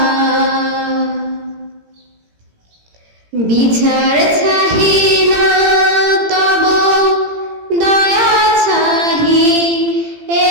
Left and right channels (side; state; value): left; late; 18 ms